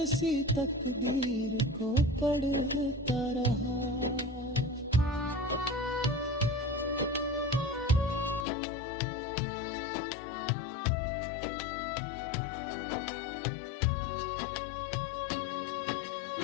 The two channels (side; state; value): right; drops out; at 8.5 s